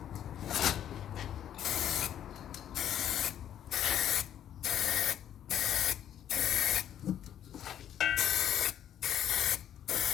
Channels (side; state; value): right; quieter; 10.4 dB